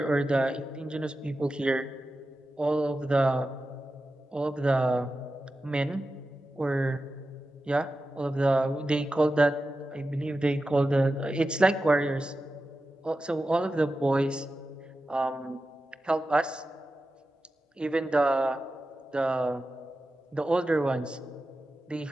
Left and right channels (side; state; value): both; normal; correlation 0.92